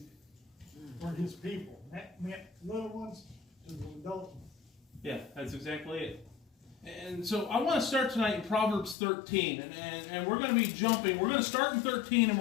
for his people. That meant little ones to the adult ones. Yeah, that's exactly it. And so I want to start tonight in Proverbs 13. And we're going to be jumping. We're going to start in 13 and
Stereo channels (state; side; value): drops out; right; at 9.0 s